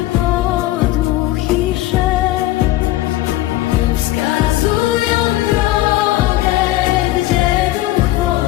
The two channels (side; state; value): right; quieter; 16.1 dB